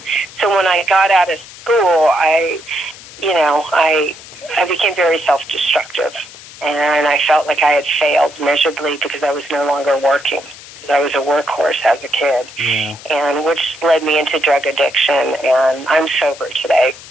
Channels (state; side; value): noise; left; hiss, 18 dB below the sound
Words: so when I got out of school, I became very self-destructive, and I felt like I had failed miserably because I was no longer working, because I was a workhorse as a kid, and which led me into drug addiction, and I'm sober today,